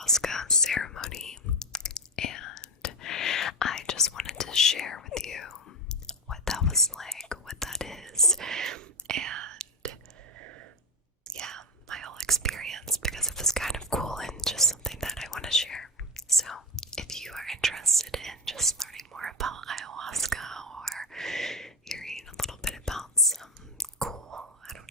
ceremony, and I just wanted to share with you what that was like, what that is, and yeah, my whole experience, because it was kind of cool and just something that I want to share. So if you are interested in just learning more about ayahuasca or hearing a little bit about some cool, I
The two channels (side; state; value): both; normal; correlation 0.16